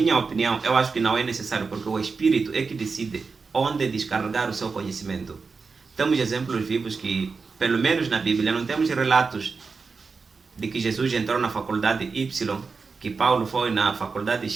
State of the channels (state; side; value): quieter; left; 4.7 dB